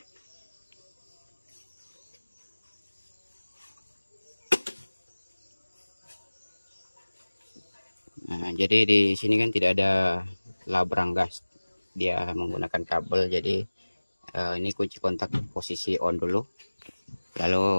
Nah, jadi di sini kan tidak ada labrang gas, dia menggunakan kabel. Jadi ini kunci kontak posisi on dulu,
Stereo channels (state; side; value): inverted; both; correlation -1.00